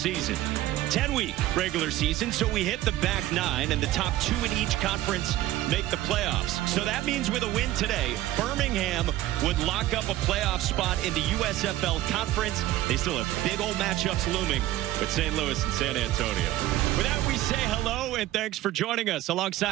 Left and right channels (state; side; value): quieter; left; 15.0 dB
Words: 10-week regular season, so we hit the back 9, and the top 2 in each conference make the playoffs. So that means with a win today, Birmingham would lock up a playoff spot in the USFL Conference. They still have big old matchups looming with St. Louis and San Antonio. With that, we say hello, and thanks for joining us.